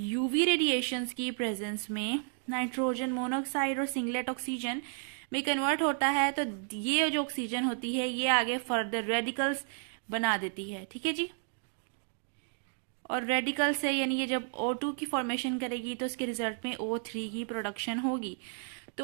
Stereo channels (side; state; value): left; silent; 56 dB below the other